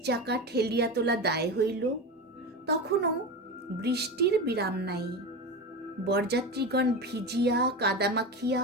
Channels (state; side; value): normal; both; correlation 0.23